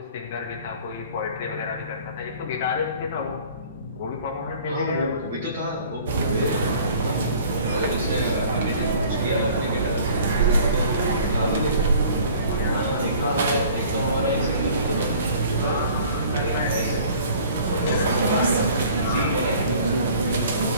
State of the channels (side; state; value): both; inverted; correlation -0.50